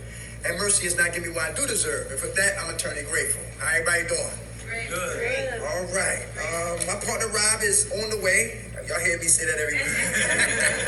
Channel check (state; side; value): identical; both; correlation 1.00